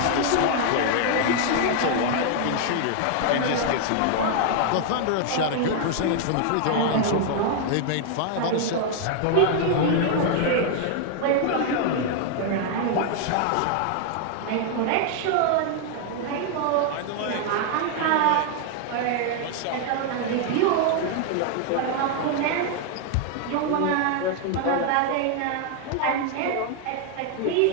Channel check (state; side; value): different; both; correlation 0.00